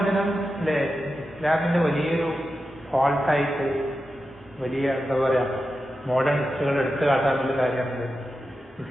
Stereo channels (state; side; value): normal; both; correlation 0.90